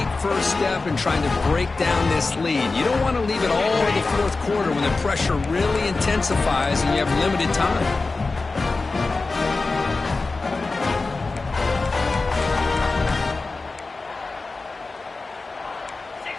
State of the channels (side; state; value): right; quieter; 3.7 dB